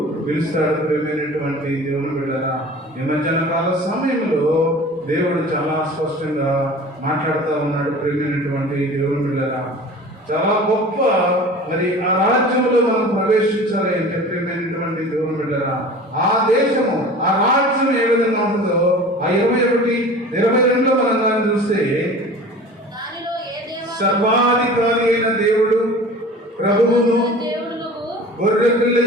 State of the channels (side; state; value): both; normal; correlation 0.40